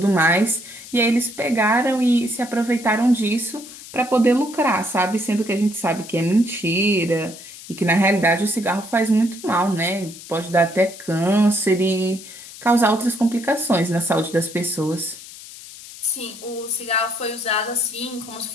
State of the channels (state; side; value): noise; left; hiss, 16 dB below the sound